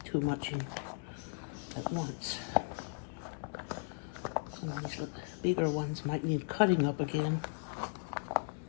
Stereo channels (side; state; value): right; silent; digital silence